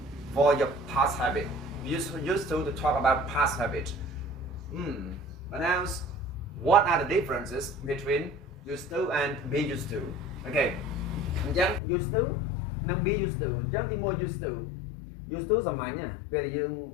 for your past habit. Used to talk about past habit. But now, what are the differences between used to and be used to? Okay, used to and be used to. Just more used to. Used to សម័យណាពេលយើង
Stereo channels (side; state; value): right; drops out; at 11.8 s